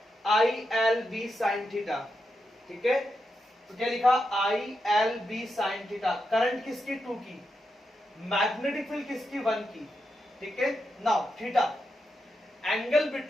ILB sine theta. ठीक है, तो क्या लिखा? ILB sine theta. करंट किसकी? 2 की, मैग्नेटिक फील्ड किसकी? 1 की। ठीक है, now theta angle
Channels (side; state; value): both; normal; correlation 0.86